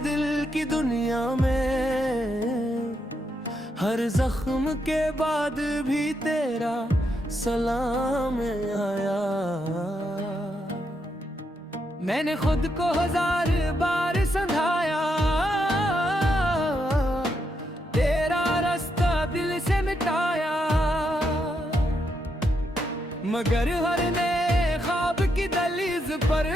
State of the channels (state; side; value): normal; both; correlation 0.80